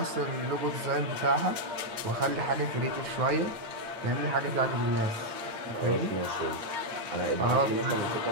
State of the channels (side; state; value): left; late; 8.6 ms